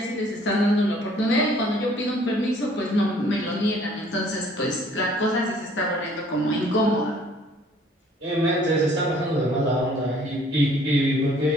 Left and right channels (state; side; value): normal; both; correlation 0.57